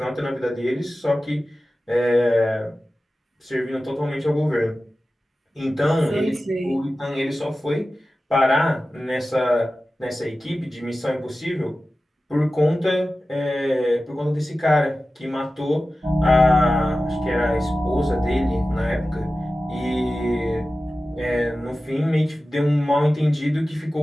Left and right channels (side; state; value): both; normal; correlation 0.95